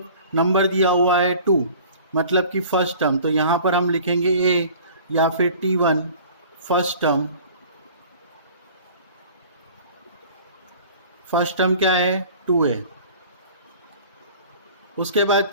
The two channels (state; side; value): inverted; both; correlation -0.46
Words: नंबर दिया हुआ है 2, मतलब कि फर्स्ट टर्म, तो यहाँ पर हम लिखेंगे A या फिर T1 first term. First term क्या है? 2A। उसके बाद